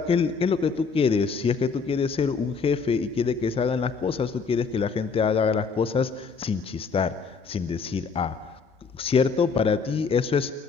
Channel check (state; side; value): quieter; right; 5.2 dB